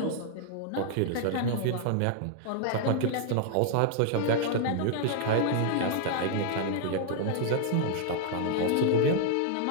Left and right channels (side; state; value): both; different; correlation -0.01